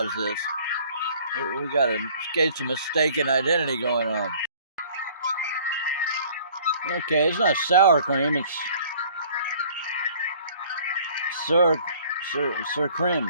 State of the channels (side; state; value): both; inverted; correlation -0.53